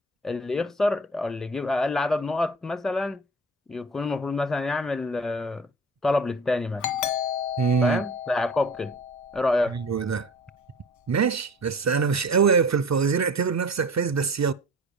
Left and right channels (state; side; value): normal; both; correlation 0.40